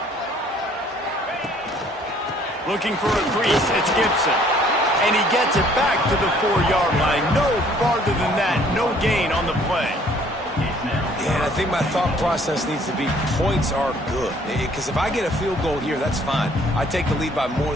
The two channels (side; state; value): both; normal; correlation 0.59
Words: Looking for a crease, it's Gibson. And he gets it back to the 4-yard line. No farther than that, no gain on the play. Yeah, and I think my thought process needs to be points are good. Because if I get a field goal here, that's fine. I take the lead by more